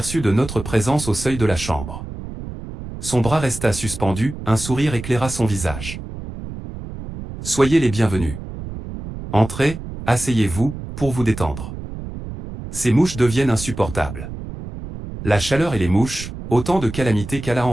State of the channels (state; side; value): noise; right; rumble, 10 dB below the sound